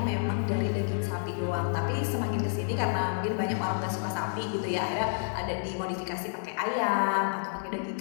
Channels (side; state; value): right; silent; 58 dB below the other